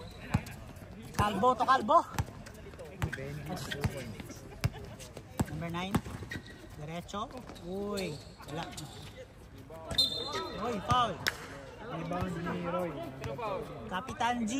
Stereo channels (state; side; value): identical; both; correlation 1.00